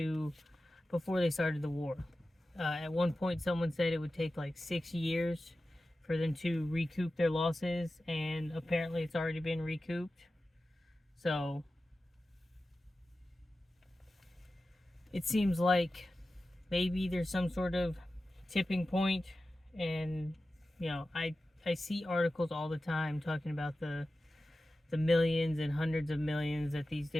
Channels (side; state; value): both; normal; correlation 0.94